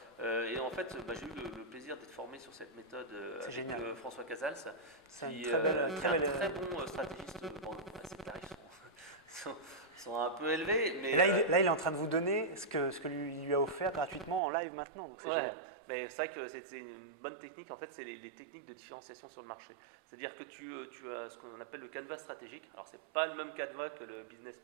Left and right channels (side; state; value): left; drops out; at 14.4 s